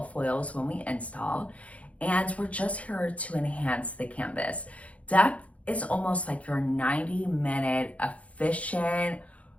foils when we install, and we're just here to enhance the canvas. Depth is almost like your 90-minute efficient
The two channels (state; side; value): late; right; 0.065 ms